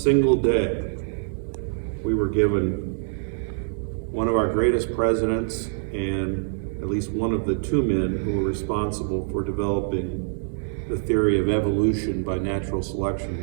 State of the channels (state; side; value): silent; left; 62 dB below the other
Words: day, we were given one of our greatest presidents and at least one of the 2 men who were responsible for developing the theory of evolution by natural selection,